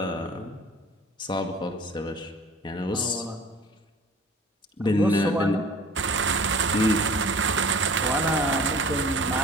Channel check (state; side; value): normal; both; correlation 0.45